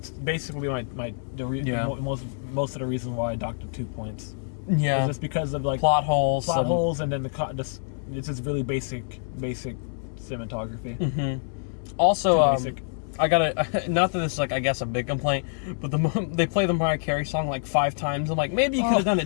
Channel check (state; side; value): silent; right; digital silence